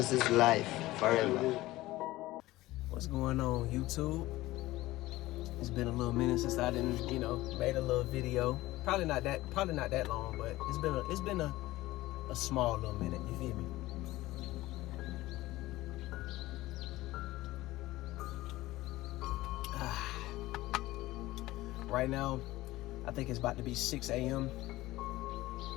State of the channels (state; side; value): quieter; right; 17.7 dB